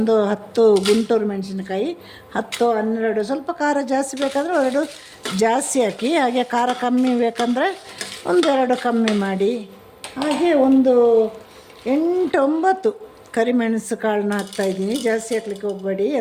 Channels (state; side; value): identical; both; correlation 1.00